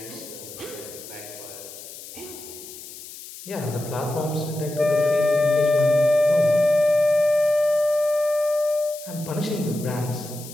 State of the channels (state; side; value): noise; left; hiss, 14 dB below the sound